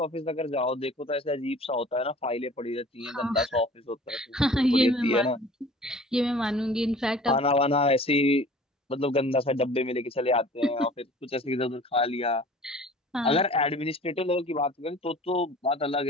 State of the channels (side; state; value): both; normal; correlation 0.46